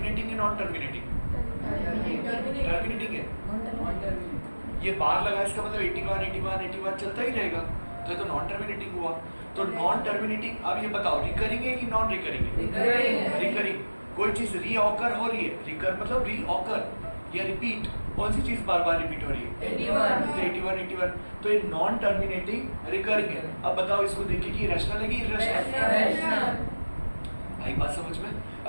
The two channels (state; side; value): inverted; both; correlation -1.00